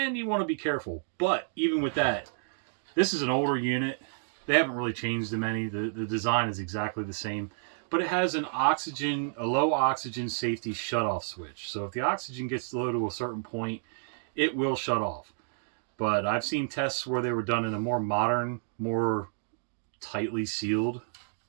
you want to be careful. But even with that, this is an older unit. They haven't really changed them any. The design is exactly the same. But it has a low oxygen safety shutoff switch. So if the oxygen gets low to a certain point, it will shut off. But I've seen tests where they were done in a more modern, more tightly sealed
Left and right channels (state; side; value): silent; left; digital silence